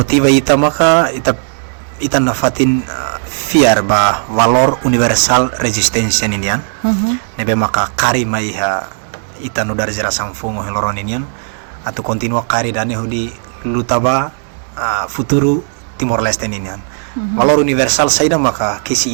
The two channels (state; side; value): silent; left; digital silence